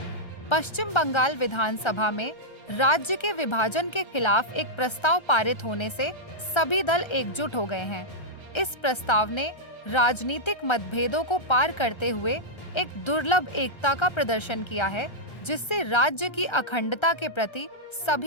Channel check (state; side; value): late; right; 1.3 ms